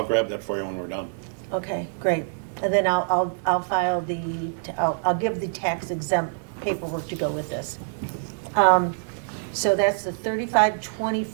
grab that for you when we're done. okay, great. And then I'll file I'll give the tax exempt paperwork to go with this. So that's the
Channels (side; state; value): left; silent; digital silence